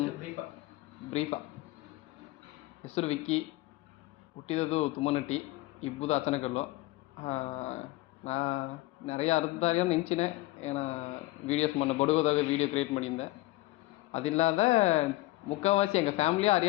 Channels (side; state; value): right; quieter; 19.1 dB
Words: ಬ್ರೀಫಾ. ಹೆಸರು ವಿಕ್ಕಿ, ಹುಟ್ಟಿದದು ತುಮ್ಮನಟ್ಟಿ, ಇಬ್ಬುದು ಅಚನಕಲ್ಲು. நான் நிறைய அறுபதாயிரம் நினச்சினேன். ஏன்னா வீடியோஸ் பண்ண படுவதாக வீடியோ க்ரியேட் பண்ணியிருந்தேன். அது இல்லாத ಮುಖ್ಯವಾಸಿ ಎಂಗೆ ಫ್ಯಾಮಿಲಿ